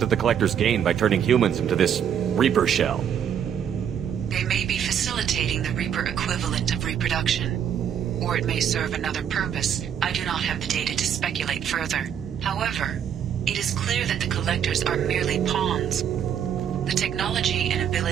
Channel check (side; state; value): left; quieter; 8.8 dB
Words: the Collectors gain by turning humans into this Reaper shell? They may be facilitating the Reaper equivalent of reproduction, or it may serve another purpose. I do not have the data to speculate further. However, it is clear that the Collectors are merely pawns. The technology and